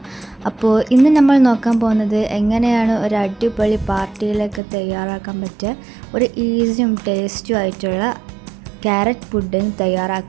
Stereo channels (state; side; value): drops out; left; at 4.6 s